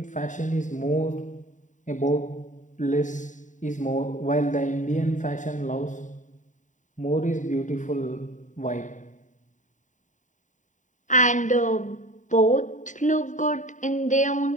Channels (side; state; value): right; late; 0.36 ms